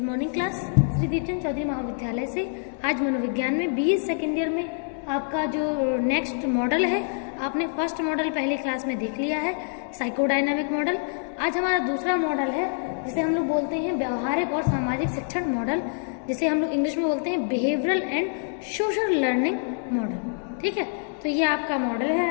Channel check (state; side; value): silent; right; digital silence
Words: class. Shri Deepchand Chaudhary महाविद्यालय से आज मनोविज्ञान में बीए सेकेंड ईयर में आपका जो नेक्स्ट मॉडल है, आपने फर्स्ट मॉडल पहली क्लास में देख लिया है, साइकोडायनामिक मॉडल। आज हमारा दूसरा मॉडल है जिसे हम लोग बोलते हैं व्यवहारिक और सामाजिक शिक्षण मॉडल, जिसे हम लोग इंग्लिश में बोलते हैं behavioural and social learning model. ठीक है, तो ये आपका मॉडल है